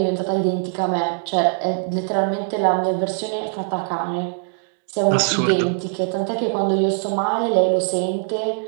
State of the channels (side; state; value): left; silent; digital silence